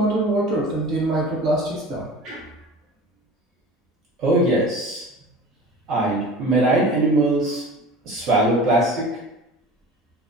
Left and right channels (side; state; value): both; normal; correlation 0.38